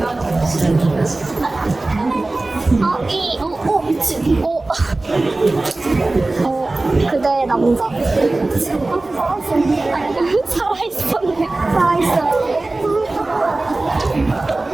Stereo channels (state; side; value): quieter; left; 3.0 dB